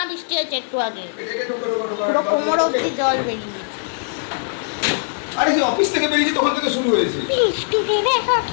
বৃষ্টি হয়েছে একটু আগে, পুরো কোমর অব্দি জল বেরিয়ে গেছে। আরে অফিস থেকে বেরিয়েছে তখন থেকে শুরু হয়েছে বৃষ্টিতে দেখো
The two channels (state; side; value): silent; right; 65 dB below the other